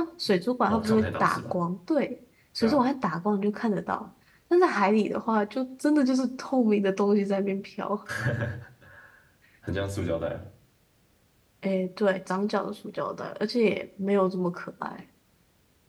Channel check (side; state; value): both; identical; correlation 1.00